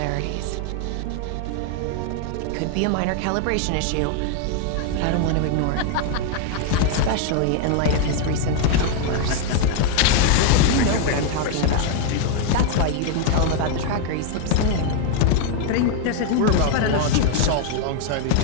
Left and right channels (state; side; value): different; both; correlation 0.00